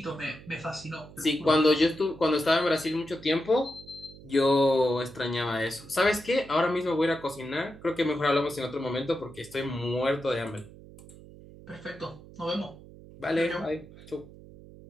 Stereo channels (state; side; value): noise; right; hum, 19 dB below the sound